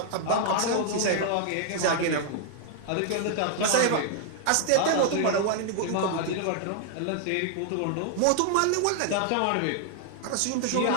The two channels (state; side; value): different; both; correlation 0.00